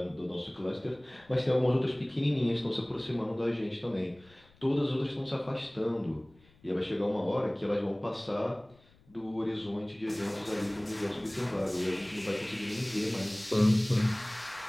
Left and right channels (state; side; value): noise; left; rumble, 29 dB below the sound